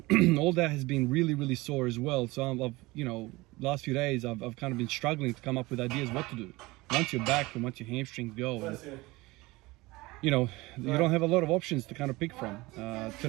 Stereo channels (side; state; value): left; quieter; 21.4 dB